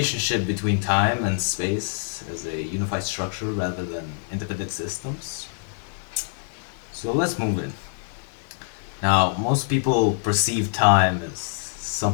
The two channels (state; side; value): silent; right; digital silence